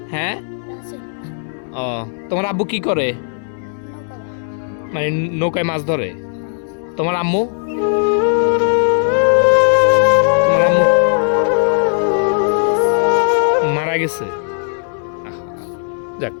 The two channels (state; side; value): silent; right; 68 dB below the other